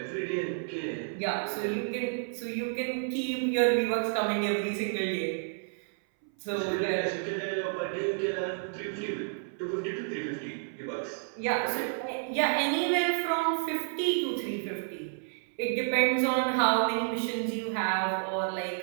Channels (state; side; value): silent; left; 57 dB below the other